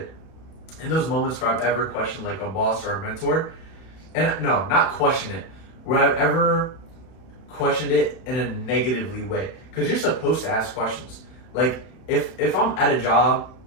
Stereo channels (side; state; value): right; late; 31 ms